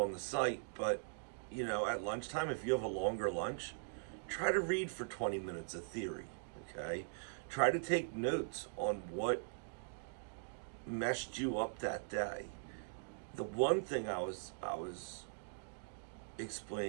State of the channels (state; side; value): silent; left; digital silence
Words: the site, but at lunchtime, if you have a longer lunch, try to read for 20 minutes of theory, okay? Try to take notes on what messed you up that day. The one thing I was